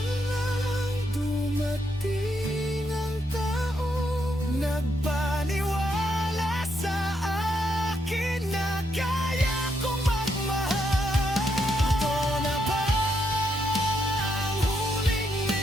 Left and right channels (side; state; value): both; normal; correlation 0.78